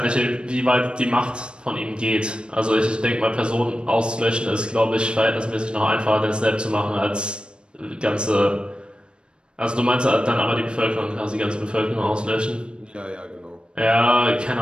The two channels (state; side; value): late; left; 0.055 ms